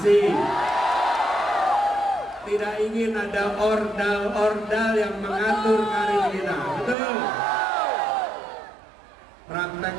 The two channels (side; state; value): left; drops out; at 7.0 s